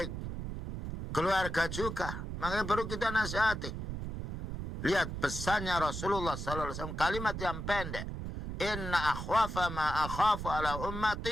keluarga juga. Makanya perlu kita nasihati. Lihat pesannya Rasulullah sallallahu alaihi wasallam, kalimat yang pendek. Inna akhwafa ma akhafu ala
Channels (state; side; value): noise; right; rumble, 6 dB below the sound